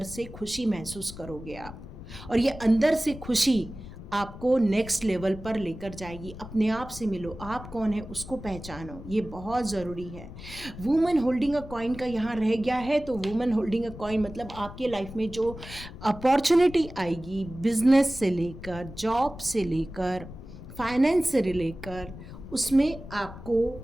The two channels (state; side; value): noise; left; rumble, 13 dB below the sound